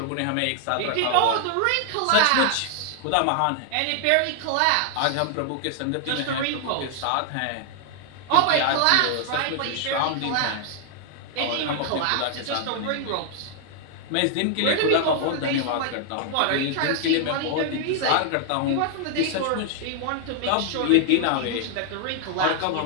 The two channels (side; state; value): both; different; correlation 0.00